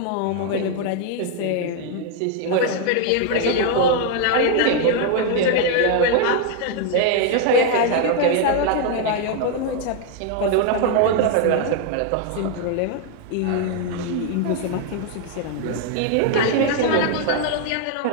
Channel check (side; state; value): both; different; correlation 0.00